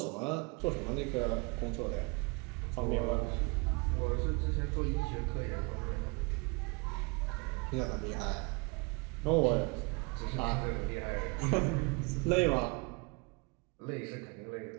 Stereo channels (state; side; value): quieter; left; 30.0 dB